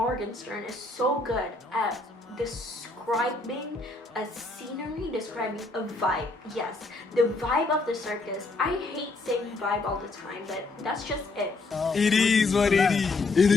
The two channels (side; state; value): right; quieter; 3.3 dB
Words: is so good at describing a scenery, describing a vibe. Yes, the vibe of the circus. I hate saying vibe all the time, but that's just it. It is what it is. It